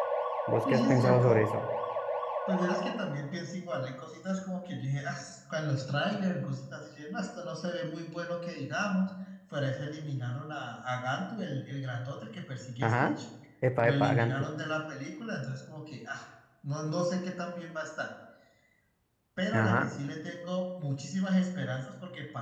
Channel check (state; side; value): identical; both; correlation 1.00